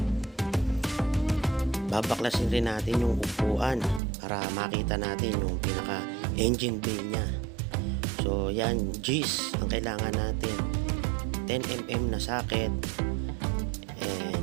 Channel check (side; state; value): left; drops out; at 4.0 s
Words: Babaklasin rin natin yung upuan para makita natin yung pinaka engine bay niya. So yan, G's ang kailangan natin, 10mm na socket,